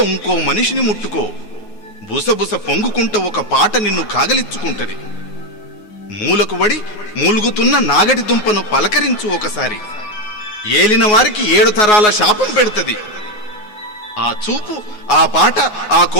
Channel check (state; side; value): late; right; 9.4 ms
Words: ఇంకో మనిషిని ముట్టుకో. బుసబుస పొంగుకుంట ఒక పాట నిన్ను కాగలిచ్చుకుంటది. మూలకు వడి మూలుగుతున్న నాగటి దుంపను పలకరించు ఒకసారి. ఏలిన వారికి 7 తరాల శాపం పెడుతది. ఆ చూపు, ఆ పాట, ఆ